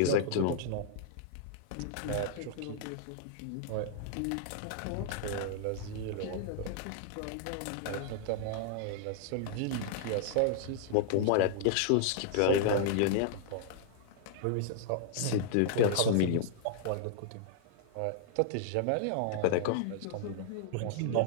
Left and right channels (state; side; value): different; both; correlation -0.01